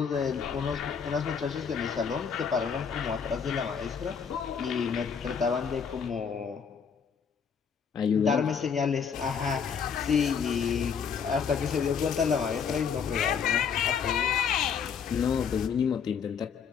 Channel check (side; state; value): right; quieter; 6.7 dB